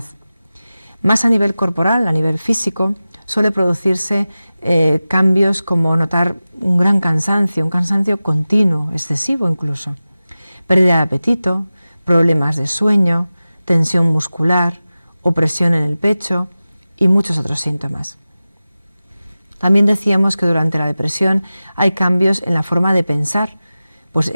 Más a nivel corporal, a nivel físico, suele producirse cambios como notar un gran cansancio, un cansancio continuo, excesivo incluso, pérdida de apetito, problemas de sueño, tensión muscular, opresión en el pecho y muchos otros síntomas. También decíamos que durante la depresión hay cambios en la forma de pensar, pues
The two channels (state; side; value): inverted; both; correlation -0.96